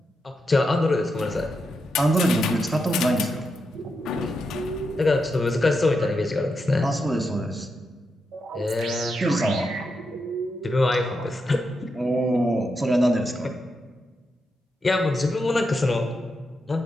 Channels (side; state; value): both; normal; correlation 0.85